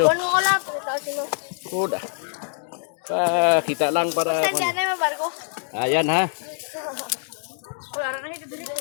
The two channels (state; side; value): silent; right; digital silence